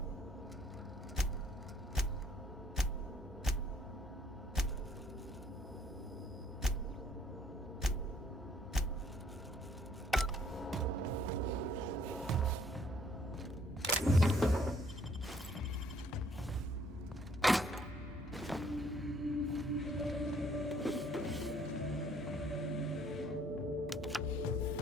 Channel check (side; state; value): both; normal; correlation 0.63